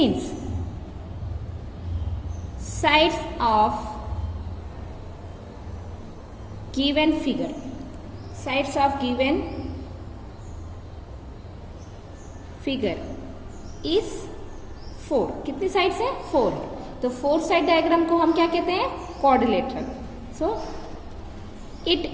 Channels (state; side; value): identical; both; correlation 1.00